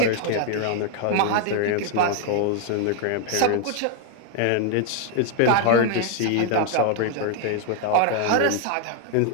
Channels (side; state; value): both; different; correlation 0.00